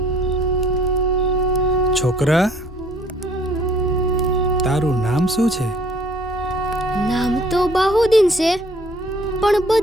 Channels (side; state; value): both; normal; correlation 0.57